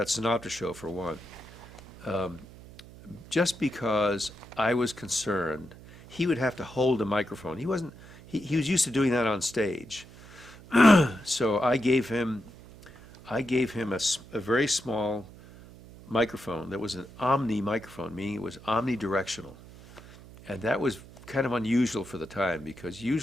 Sinatra show for one. Just because I was concerned, he would have to hold a microphone. He was used to doing that on stage. So I gave him a very small microphone that was an omni microphone, meaning it was omnidirectional. And that was kind of unusual for the time, because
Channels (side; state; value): right; noise; hum, 19 dB below the sound